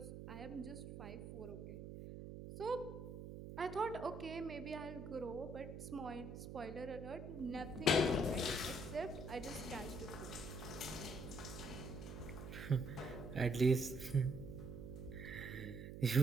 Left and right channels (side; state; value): right; noise; hum, 8 dB below the sound